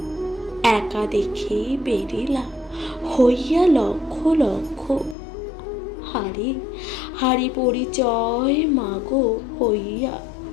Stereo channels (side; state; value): right; drops out; at 5.2 s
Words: একা দেখে বেরিলা হইয়া লক্ষ লক্ষ, হারি পরিচয় মাগো হইয়া